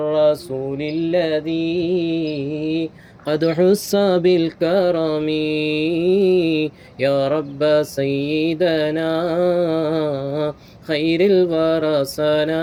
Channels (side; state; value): both; identical; correlation 1.00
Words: الذي قد حس بالكرم يا رب سيدنا خير الورى